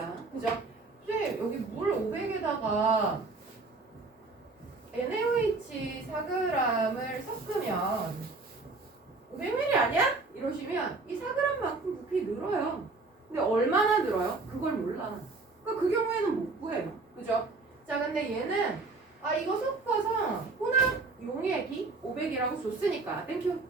그죠? 근데 여기 물 500에다가 NaOH 4g을 섞으면 500ml 아니야? 이러시면 이 4g만큼 부피 늘어요. 근데 얼마나 늘어요? 그걸 몰라. 그러니까 그 경우에는 못 구해요. 그죠? 자, 근데 얘는 이거 섞어서 혼합 용액이 500이라고 줬으니까 땡큐.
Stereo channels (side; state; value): left; quieter; 3.7 dB